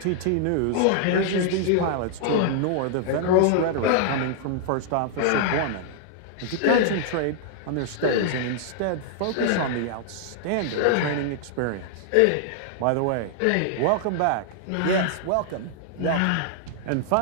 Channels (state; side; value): different; both; correlation -0.01